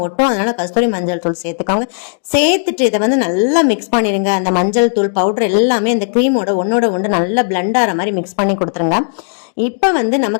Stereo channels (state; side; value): silent; right; digital silence